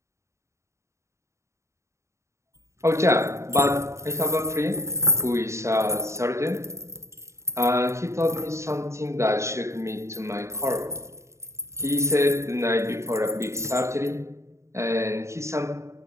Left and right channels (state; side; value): late; left; 0.14 ms